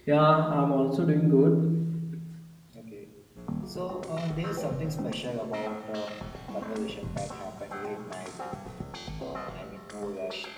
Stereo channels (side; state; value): both; identical; correlation 1.00